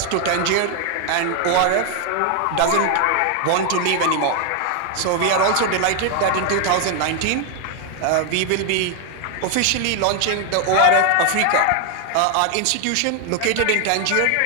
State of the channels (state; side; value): different; both; correlation 0.01